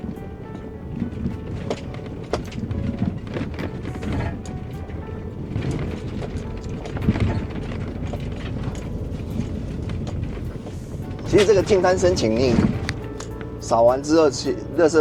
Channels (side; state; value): both; identical; correlation 1.00